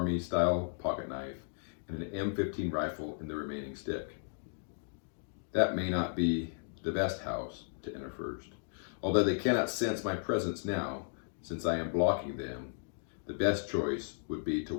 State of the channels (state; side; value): silent; right; digital silence